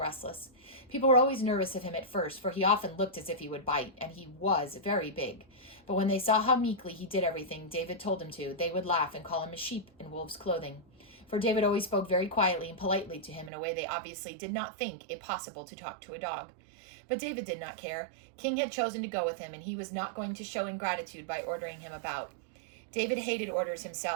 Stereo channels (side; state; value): left; drops out; at 13.5 s